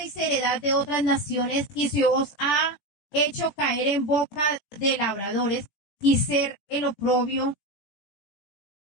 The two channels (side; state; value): right; late; 17 ms